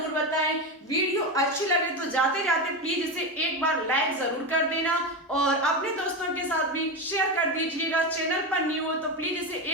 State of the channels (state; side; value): normal; both; correlation 0.16